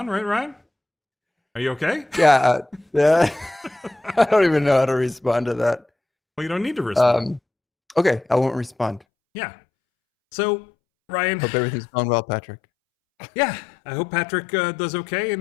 right, Ryan? Are you okay? Yeah. I don't even know how to respond to that. Well, you don't need to respond. Okay, I won't respond. Yeah. So, Ryan. Hope everything's going well, Patrick. Yeah, I hope Patrick does okay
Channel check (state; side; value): drops out; right; at 9.0 s